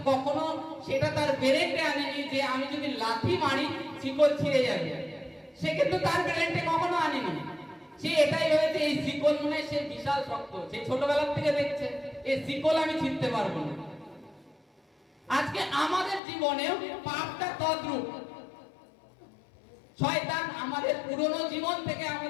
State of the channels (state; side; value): drops out; right; at 16.2 s